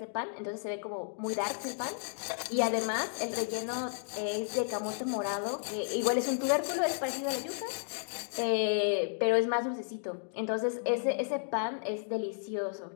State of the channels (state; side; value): silent; right; digital silence